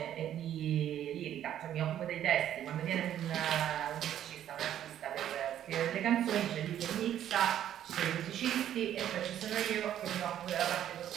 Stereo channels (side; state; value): left; quieter; 10.9 dB